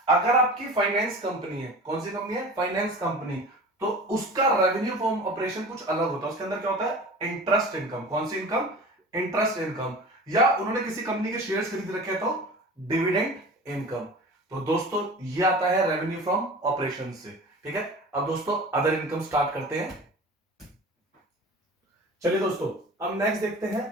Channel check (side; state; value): both; normal; correlation 0.37